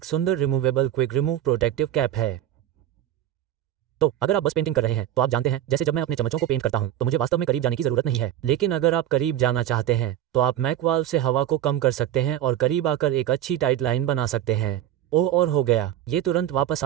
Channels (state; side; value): quieter; left; 12.0 dB